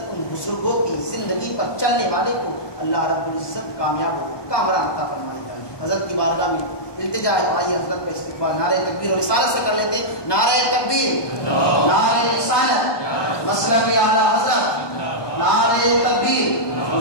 ان بزرگوں کی زندگی پر چلنے والے کو اللہ رب العزت کامیاب و کامران عطا فرما دیتا ہے۔ حضرت کی بارگاہ میں التجا ہے، آئیے حضرت کا استقبال نعرہ تکبیر اور رسالت سے کر لیتے ہیں۔ نعرہ تکبیر، نعرہ رسالت، مسلک اعلی حضرت، نعرہ تکبیر،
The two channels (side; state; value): right; late; 1.2 ms